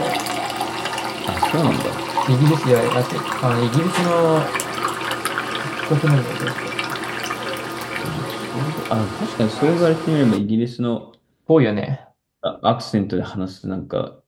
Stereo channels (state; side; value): identical; both; correlation 1.00